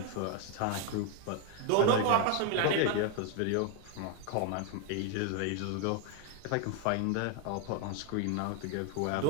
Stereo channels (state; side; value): different; both; correlation 0.01